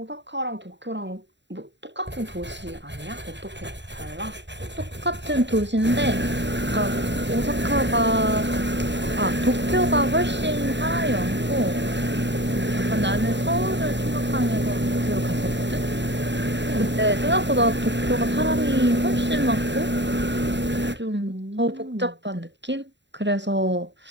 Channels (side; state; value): left; late; 0.52 ms